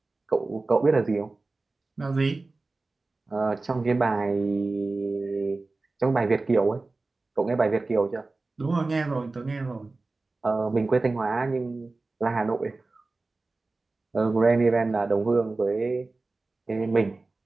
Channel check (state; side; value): quieter; left; 3.4 dB